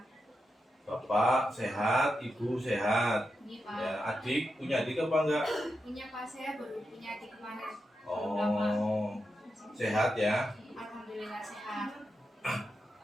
Bapak sehat, Ibu sehat. Ini Pak. Ya, adik punya adik apa enggak? Punya Pak, saya baru punya adik kemarin. Belum lama. Oh, sehat ya. Alhamdulillah sehat.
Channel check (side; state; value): both; normal; correlation 0.87